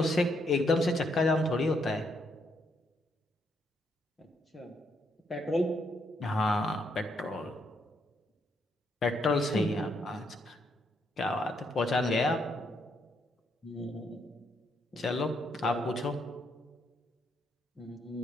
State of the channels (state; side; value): normal; both; correlation 0.75